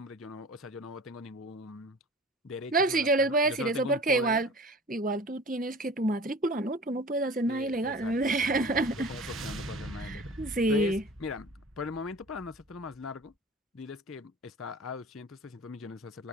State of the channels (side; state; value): both; normal; correlation 0.41